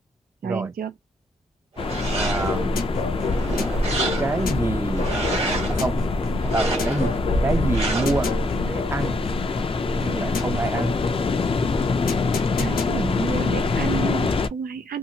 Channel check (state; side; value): normal; both; correlation 0.72